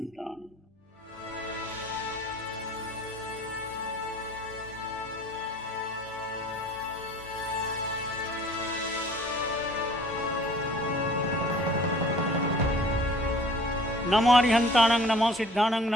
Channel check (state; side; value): normal; both; correlation 0.50